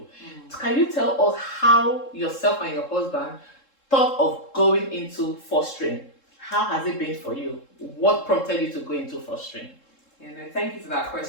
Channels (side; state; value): right; late; 3.7 ms